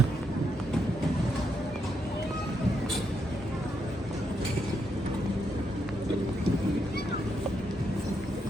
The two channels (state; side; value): normal; both; correlation 0.79